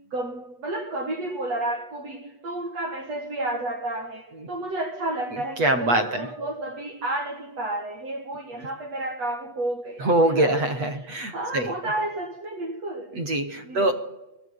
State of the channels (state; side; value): late; left; 8.2 ms